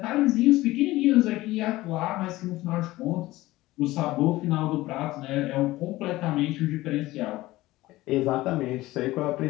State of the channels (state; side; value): quieter; right; 17.9 dB